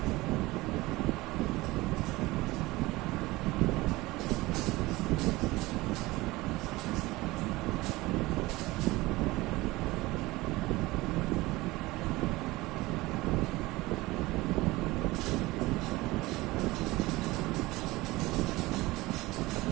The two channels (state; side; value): quieter; left; 20.2 dB